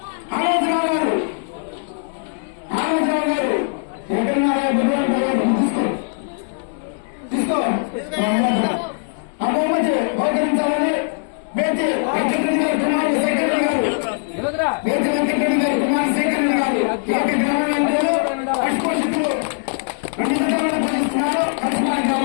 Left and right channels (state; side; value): silent; right; 65 dB below the other